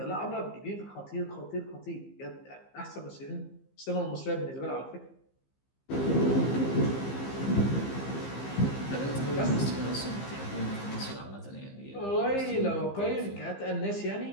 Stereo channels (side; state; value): right; late; 15 ms